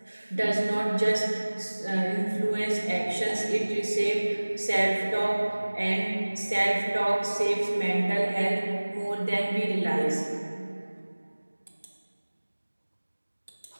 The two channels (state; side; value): inverted; both; correlation -1.00